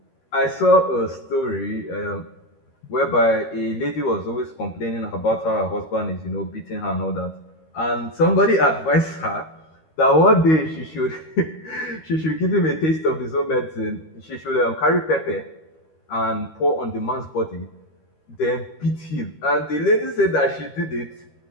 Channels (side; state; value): right; late; 13 ms